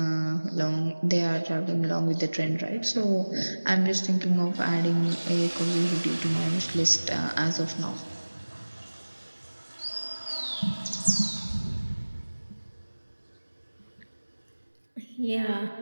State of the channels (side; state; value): both; inverted; correlation -1.00